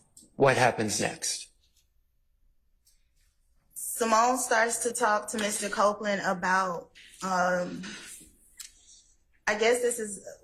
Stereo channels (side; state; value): both; identical; correlation 1.00